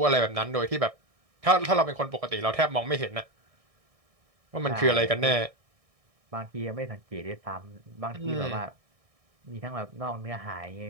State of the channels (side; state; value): left; late; 1.6 ms